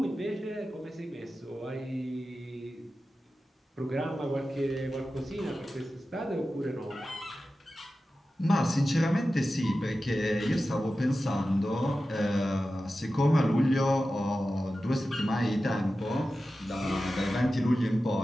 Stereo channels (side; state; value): both; normal; correlation 0.93